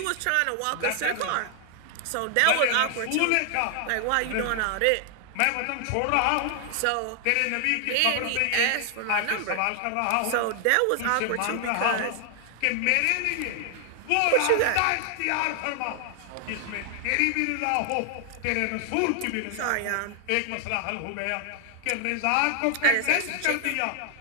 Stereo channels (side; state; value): both; different; correlation 0.00